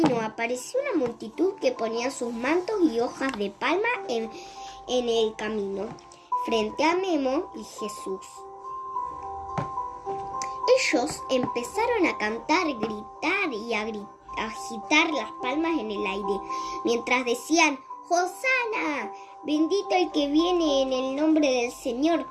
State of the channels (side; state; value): both; identical; correlation 1.00